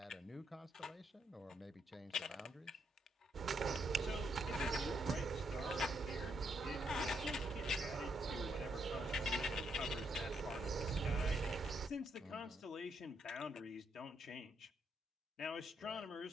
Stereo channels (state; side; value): normal; both; correlation 0.77